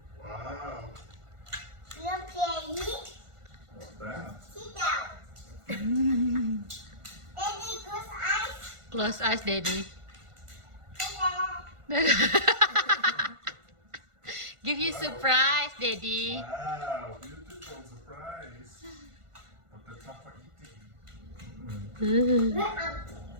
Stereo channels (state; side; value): late; left; 1.5 ms